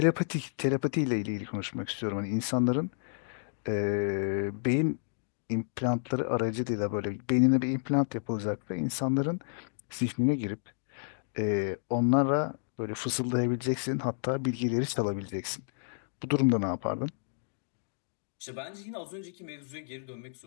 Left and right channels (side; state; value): right; silent; digital silence